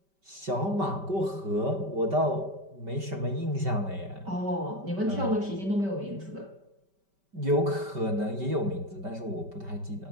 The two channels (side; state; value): left; late; 5.1 ms